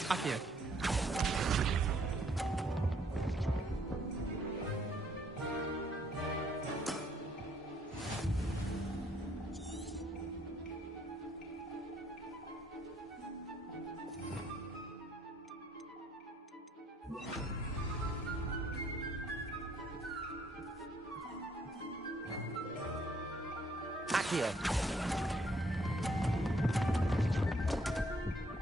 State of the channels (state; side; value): normal; both; correlation 0.67